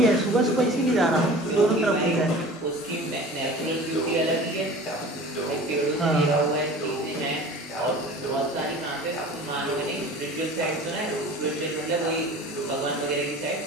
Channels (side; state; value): both; normal; correlation 0.40